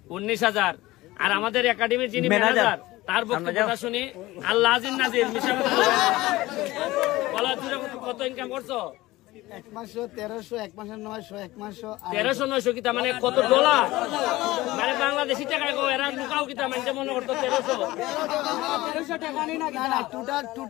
19,000। আর আমাদের একাডেমির যিনি ম্যানেজার তার বক্তব্যটা শুনি, আল্লাহ আজিজ নাজির মিশা বলা, কত ইনকাম করছো? 1 মাসে 1300, 1 মাসে 900, 1 মাসে 1300-900 কিতা মানে কত ডলার? মানে বাংলাদেশি টাকা এরা লুকাও কিতা মানে মনে করতো 1300 টাকা না,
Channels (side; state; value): right; quieter; 18.5 dB